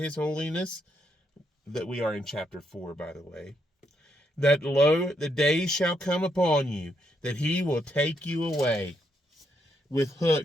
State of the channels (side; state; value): both; normal; correlation 0.77